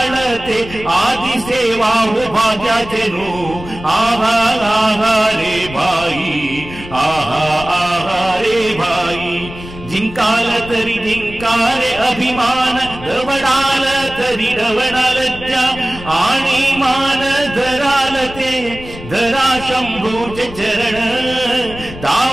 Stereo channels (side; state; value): left; noise; rumble, 14 dB below the sound